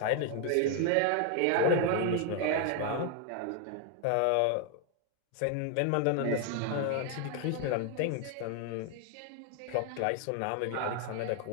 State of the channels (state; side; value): different; both; correlation 0.01